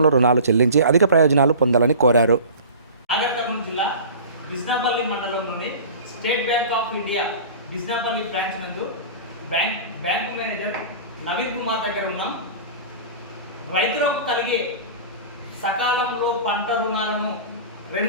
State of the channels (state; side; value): inverted; both; correlation -0.37